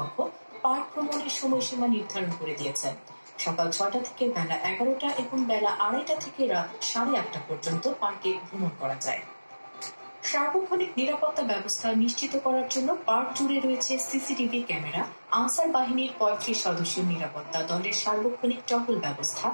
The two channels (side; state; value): both; inverted; correlation -1.00